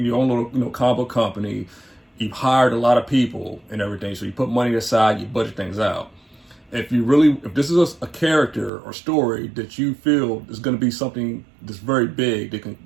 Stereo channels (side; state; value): left; drops out; at 8.7 s